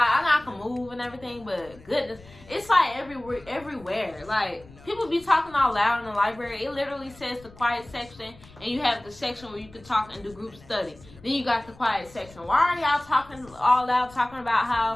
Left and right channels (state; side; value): noise; left; rumble, 22 dB below the sound